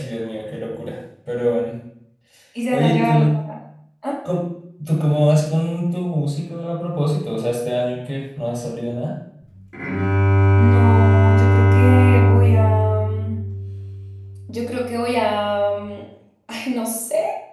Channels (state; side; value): identical; both; correlation 1.00